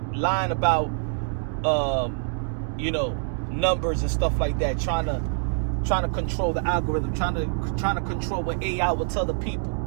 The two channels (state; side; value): silent; left; digital silence